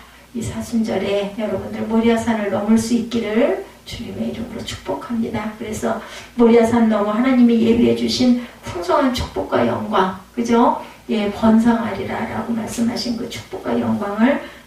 이 사순절에 여러분들 모리아산을 넘을 수 있기를 주님의 이름으로 축복합니다. 그래서 모리아산 넘어 하나님이 예비해 주신 풍성한 축복과 영광 그죠? 예 번성하리라 라고 말씀하신 그 축복과 영광을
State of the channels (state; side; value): identical; both; correlation 1.00